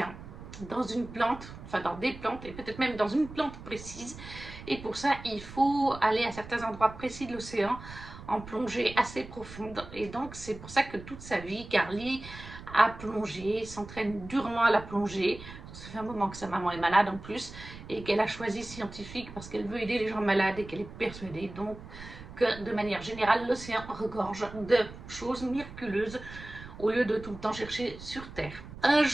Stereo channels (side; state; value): right; noise; rumble, 14 dB below the sound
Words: dans une plante, enfin dans des plantes, et peut-être même dans une plante précise. Et pour ça, il faut aller à certains endroits précis de l'océan en plongée assez profonde. Et donc, c'est pour ça que toute sa vie, Carly a plongé, s'entraîne durement à la plongée. Ça fait un moment que sa maman est malade en plus et qu'elle a choisi scientifique parce qu'elle veut aider les gens malades et qu'elle est persuadée donc que de manière générale l'océan regorge de choses miraculeuses au lieu de tout le temps chercher sur Terre. Un